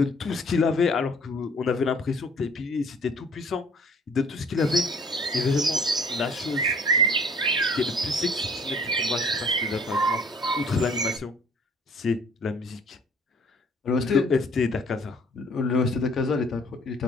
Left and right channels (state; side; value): normal; both; correlation 0.56